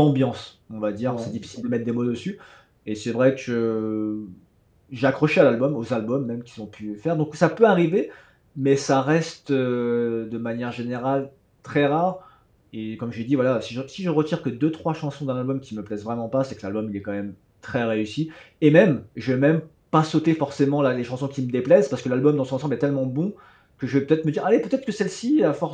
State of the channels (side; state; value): both; identical; correlation 1.00